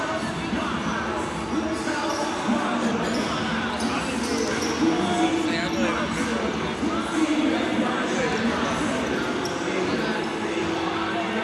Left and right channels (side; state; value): both; identical; correlation 1.00